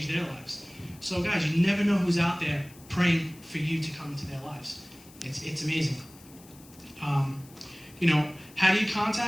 their lives. So guys, you never know who's out there praying for you to come into their lives. It's amazing. How do you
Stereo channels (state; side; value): noise; left; hiss, 23 dB below the sound